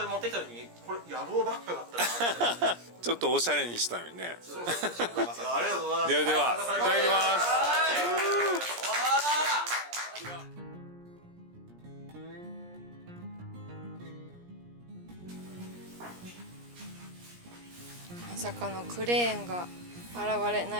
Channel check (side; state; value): left; late; 17 ms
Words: れ持ってきた時これ野郎ばっかだったなって。ちょっとおしゃれにしたのにね。ありがとうございます。ではいただきます。まさかのクレーンが現れ